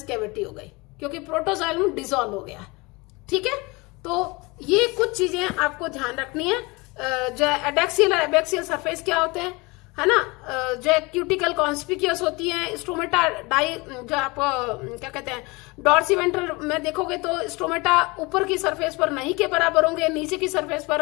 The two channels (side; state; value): right; quieter; 25.4 dB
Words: कैविटी हो गई, क्योंकि प्रोटोजाइलम डिसॉल्व हो गया। ठीक है, तो ये कुछ चीजें आपको ध्यान रखनी है। जो एडेक्सियल और एबैक्सियल सरफेस क्या होते हैं, है ना, जो क्यूटिकल कॉन्स्पिक्यूअस होती है। स्ट्रोमेटा डाई जो आप क्या कहते हैं डॉर्सीवेंट्रल में देखोगे तो स्ट्रोमेटा ऊपर की सरफेस पर नहीं के बराबर होंगे, नीचे की सरफेस